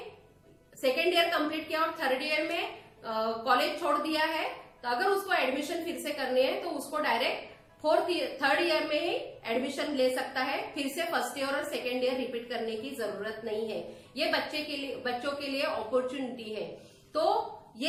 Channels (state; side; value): identical; both; correlation 1.00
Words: ईयर कंप्लीट किया और थर्ड ईयर में कॉलेज छोड़ दिया है तो अगर उसको एडमिशन फिर से करनी है तो उसको डायरेक्ट थर्ड ईयर में ही एडमिशन ले सकता है। फिर से फर्स्ट ईयर और सेकेंड ईयर रिपीट करने की जरूरत नहीं है। ये बच्चों के लिए अपॉर्चुनिटी है। तो